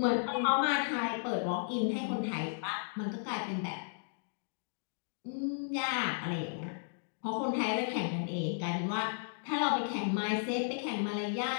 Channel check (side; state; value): right; silent; digital silence